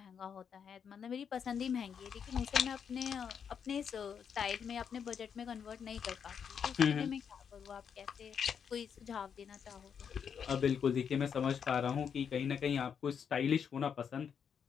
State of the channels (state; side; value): quieter; right; 7.3 dB